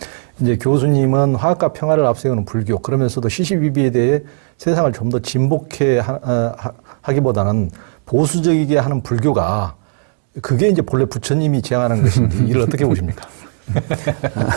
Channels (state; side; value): silent; left; 69 dB below the other